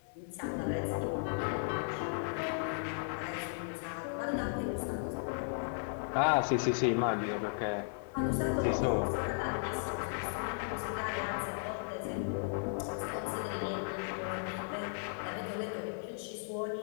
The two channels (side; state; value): right; silent; digital silence